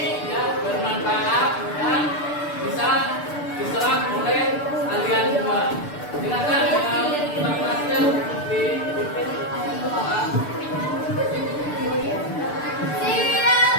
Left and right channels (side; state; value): right; late; 6.8 ms